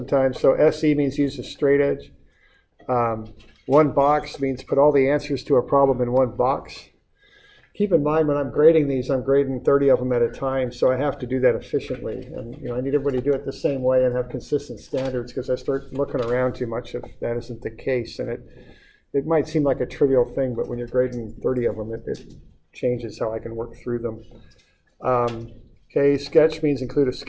So SE means use a straight edge. One box means put all the answers to a problem in one box. Keep in mind when I'm grading these, I'm grading 30 of them at a time, so I have to do that efficiently. And I need everybody to do it the same way and have consistent standards, because I start looking around too much if that isn't the case. And it might seem like a trivial thing, but when you're grading 30 of them, it changes how I can work through them. Okay, sketch means include a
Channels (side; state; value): both; identical; correlation 1.00